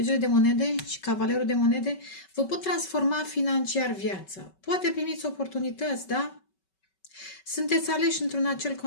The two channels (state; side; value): late; right; 5.3 ms